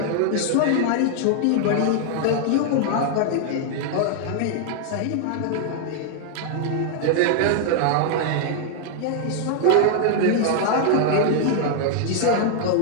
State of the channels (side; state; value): both; different; correlation 0.00